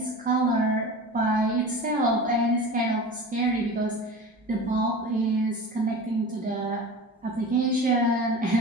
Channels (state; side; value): normal; both; correlation 0.34